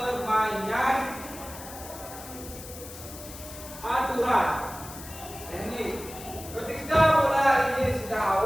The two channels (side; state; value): left; noise; hiss, 14 dB below the sound